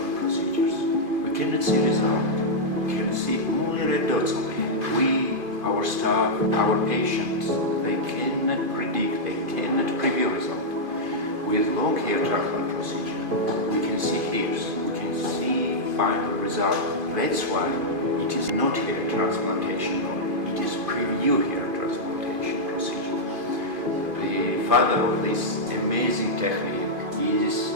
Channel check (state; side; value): late; left; 2.5 ms